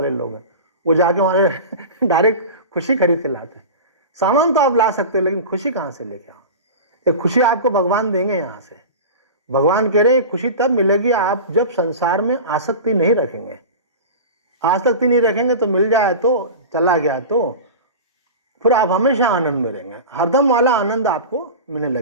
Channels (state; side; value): inverted; both; correlation -0.30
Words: लोग हैं, वो जाके वहाँ डायरेक्ट खुशी खरीद के लाते हैं। सामान तो आप ला सकते हो, लेकिन खुशी कहाँ से लेके आओ? ये खुशी आपको भगवान देंगे यहाँ से। भगवान कह रहे हैं खुशी तब मिलेगी आप जब संसार में आसक्ति नहीं रखेंगे। आसक्ति नहीं रखेंगे तो मिल जाए तो, चला गया तो, फिर आप हमेशा आनंद में रहेंगे, हरदम वाला आनंद आपको मिलने